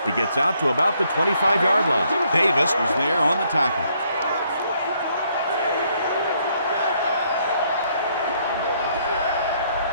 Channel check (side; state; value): both; inverted; correlation -0.70